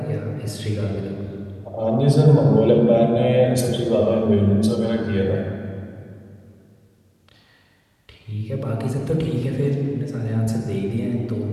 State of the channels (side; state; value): both; identical; correlation 1.00